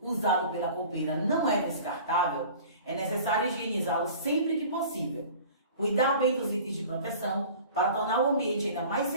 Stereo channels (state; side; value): inverted; both; correlation -0.44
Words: usado pela copeira não é descartável, é necessário higienizá-lo sempre que possível. Cuidar bem dos itens de proteção para tornar o ambiente ainda mais